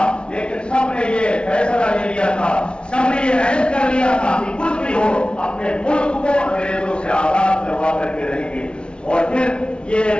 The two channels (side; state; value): right; late; 0.057 ms